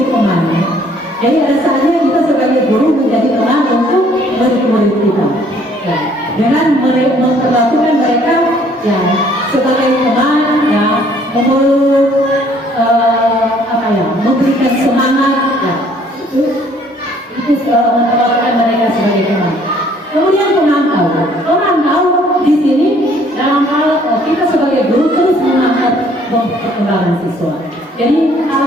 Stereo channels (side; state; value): both; normal; correlation 0.60